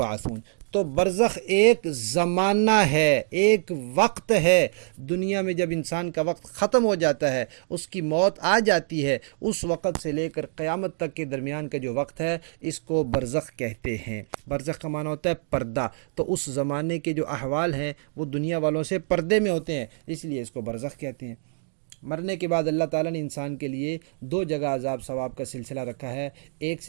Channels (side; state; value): left; silent; digital silence